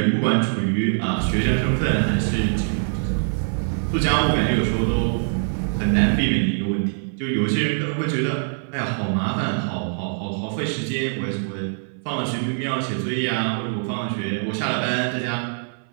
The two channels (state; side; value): silent; left; 60 dB below the other